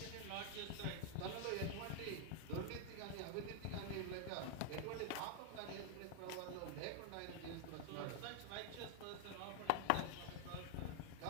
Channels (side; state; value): both; different; correlation 0.00